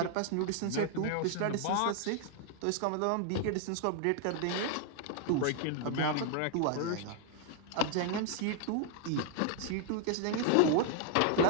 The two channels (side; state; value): both; different; correlation 0.00